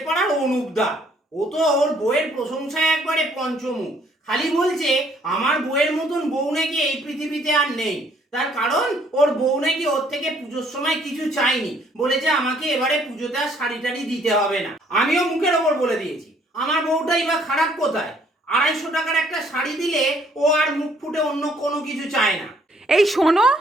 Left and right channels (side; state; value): both; normal; correlation 0.63